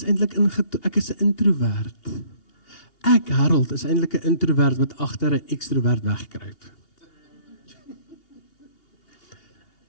eintlik ek is 'n introvert. Ek, Harold, is eintlik 'n introvert wat agter 'n ekstrovert wegkruip.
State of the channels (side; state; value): right; late; 2.8 ms